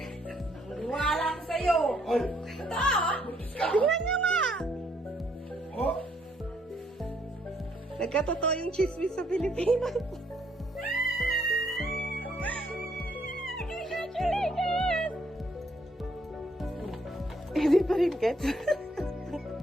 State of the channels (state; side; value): normal; both; correlation 0.69